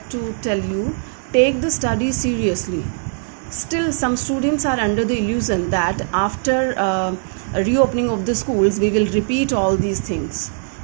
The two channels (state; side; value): silent; left; 66 dB below the other